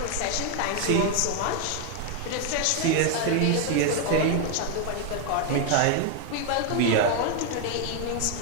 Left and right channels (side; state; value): both; different; correlation 0.01